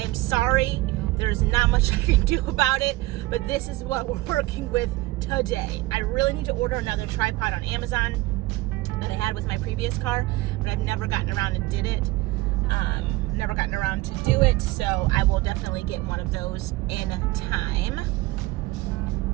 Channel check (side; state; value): left; quieter; 19.4 dB